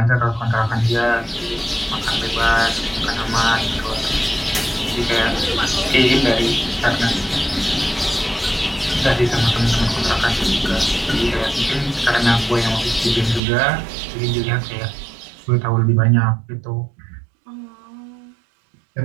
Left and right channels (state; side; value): drops out; left; at 13.4 s